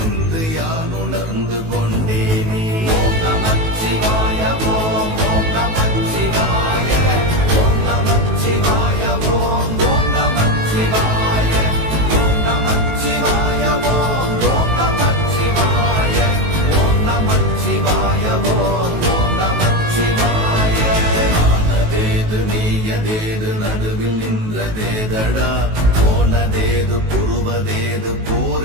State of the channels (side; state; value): left; late; 18 ms